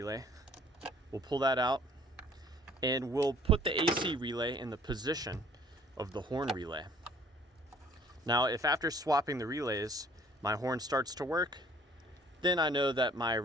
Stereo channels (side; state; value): both; normal; correlation 0.55